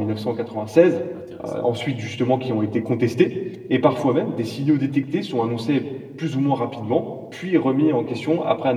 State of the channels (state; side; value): identical; both; correlation 1.00